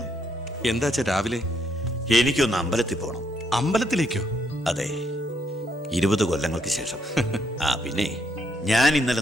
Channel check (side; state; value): both; normal; correlation 0.74